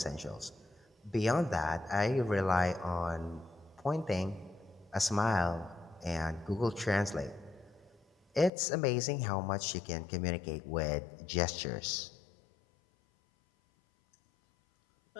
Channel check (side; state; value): right; drops out; at 8.5 s